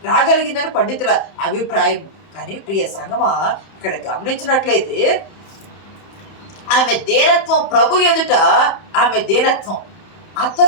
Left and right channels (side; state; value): right; late; 31 ms